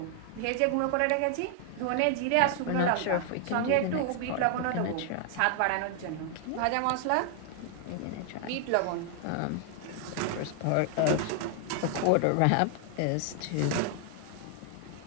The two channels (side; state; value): both; different; correlation 0.00